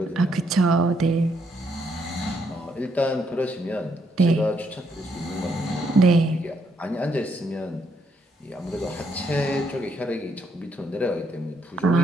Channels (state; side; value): normal; both; correlation 0.74